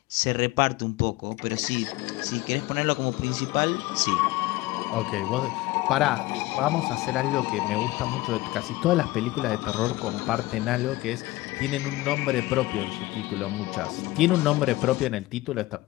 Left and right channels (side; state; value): right; quieter; 18.9 dB